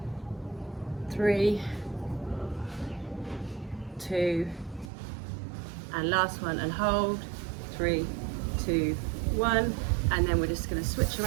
3, 2, and last one, and hold. 3, 2, 1. And then we're just going to switch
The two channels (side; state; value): left; drops out; at 4.9 s